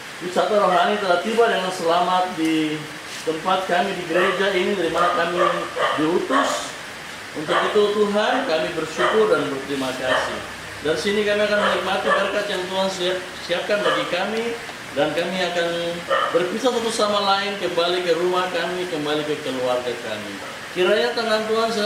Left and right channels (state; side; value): identical; both; correlation 1.00